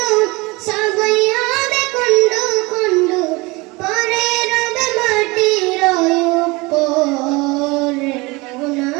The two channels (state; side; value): quieter; left; 24.3 dB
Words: সবই হবে খণ্ড খণ্ড, পরে রবে মাটির উপর। মন